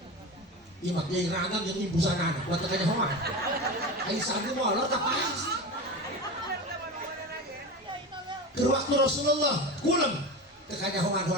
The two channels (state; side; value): normal; both; correlation 0.26